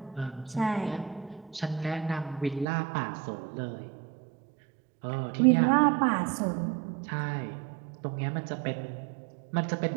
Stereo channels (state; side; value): drops out; left; at 2.7 s